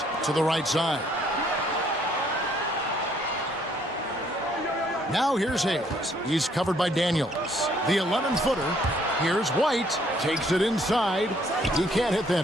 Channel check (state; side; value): normal; both; correlation 0.65